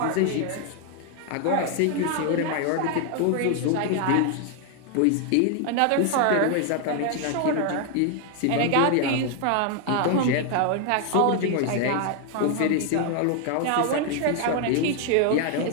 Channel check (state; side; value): different; both; correlation 0.00